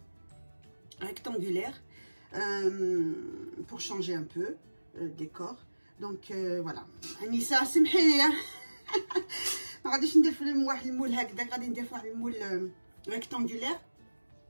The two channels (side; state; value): both; inverted; correlation -1.00